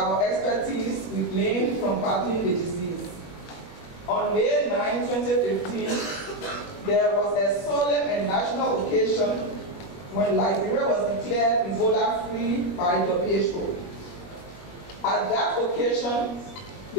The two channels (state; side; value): late; right; 21 ms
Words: expertise we gained from battling the disease. On May 9, 2015, there was a solemn and national occasion when Liberia was declared Ebola-free by WHO. At that occasion,